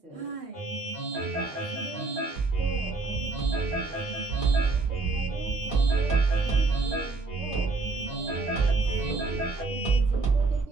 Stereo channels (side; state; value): left; quieter; 3.7 dB